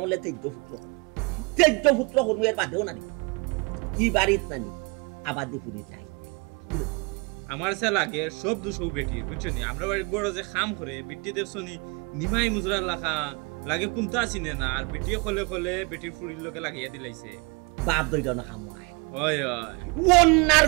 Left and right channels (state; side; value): quieter; left; 30.9 dB